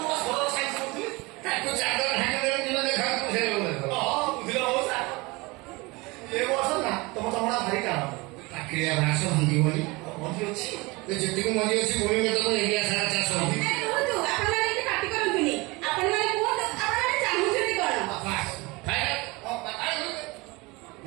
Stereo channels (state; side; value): quieter; left; 24.3 dB